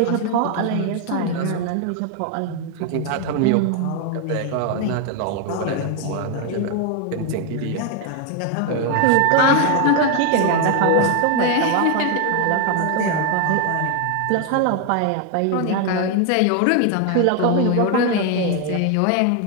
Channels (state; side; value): different; both; correlation 0.01